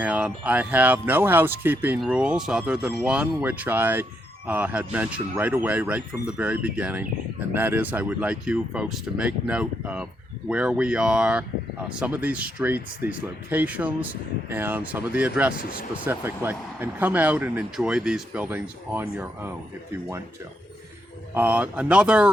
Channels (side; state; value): both; normal; correlation 0.79